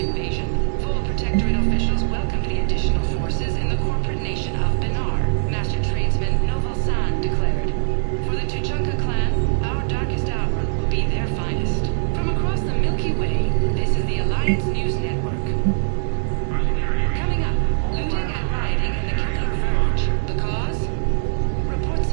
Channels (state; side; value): silent; left; digital silence